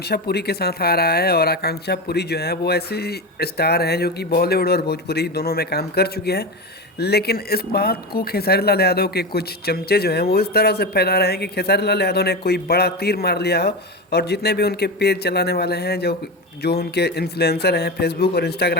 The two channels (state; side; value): normal; both; correlation 0.20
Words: पुरी के साथ आ रहा है। और आकांक्षा पुरी जो है वो ऐसे स्टार हैं जो कि बॉलीवुड और भोजपुरी दोनों में काम कर चुके हैं। लेकिन इस बात को खेसारी लाल यादव के कुछ चमचे जो हैं वो इस तरह से फैला रहे हैं कि खेसारी लाल यादव ने कोई बड़ा तीर मार लिया हो। और जितने भी उनके पेज चलाने वाले हैं, जो जो उनके इन्फ्लुएंसर हैं, फेसबुक और